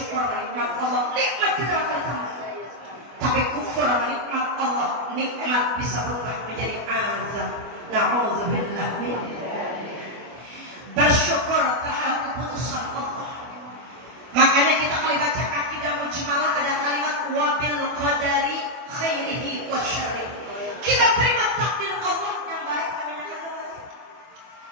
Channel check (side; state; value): left; late; 24 ms